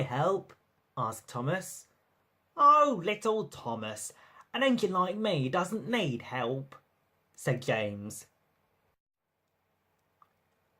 help?" asked Thomas. "Oh, little Thomas, an engine like me doesn't need help," said James.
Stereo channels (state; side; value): identical; both; correlation 1.00